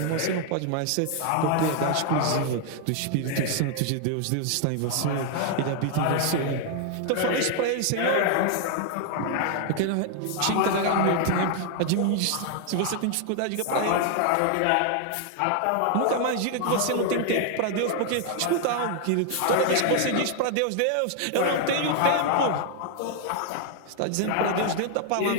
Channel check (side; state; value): both; different; correlation 0.00